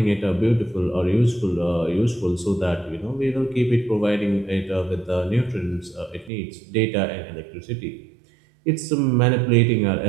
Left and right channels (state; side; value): drops out; left; at 6.3 s